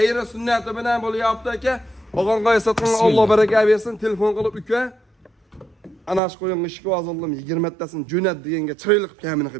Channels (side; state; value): left; drops out; at 6.2 s